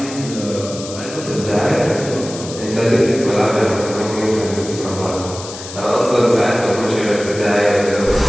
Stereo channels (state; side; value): noise; left; hiss, 12 dB below the sound